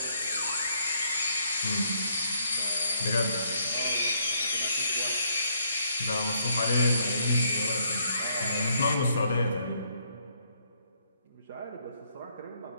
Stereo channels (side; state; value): both; inverted; correlation -0.71